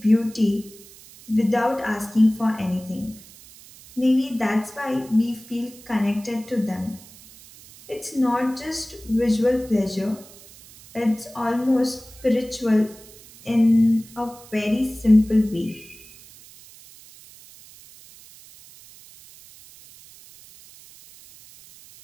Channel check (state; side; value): noise; right; hiss, 21 dB below the sound